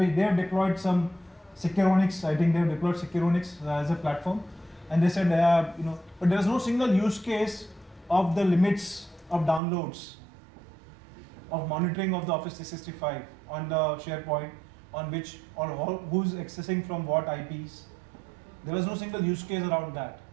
have deployed some Securonics. I think they have deployed Securonics as a platform. And they said, but there was no single use case of the limits of downloads, of monitoring of the Office 365 on the SharePoint, on which or who's accessing from what IPs. There was no single use case around that.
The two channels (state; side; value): drops out; left; at 9.6 s